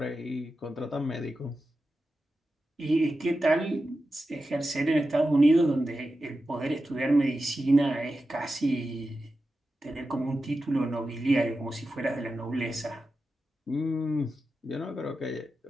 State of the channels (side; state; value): both; normal; correlation 0.91